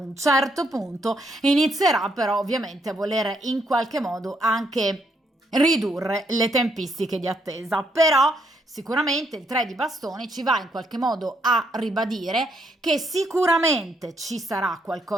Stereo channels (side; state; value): both; normal; correlation 0.74